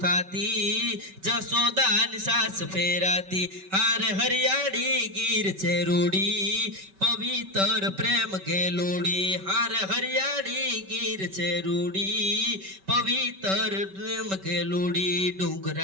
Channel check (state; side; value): late; left; 5.2 ms